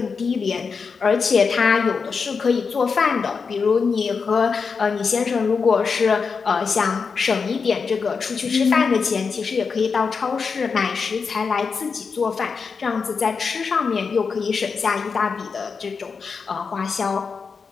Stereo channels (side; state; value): right; quieter; 5.3 dB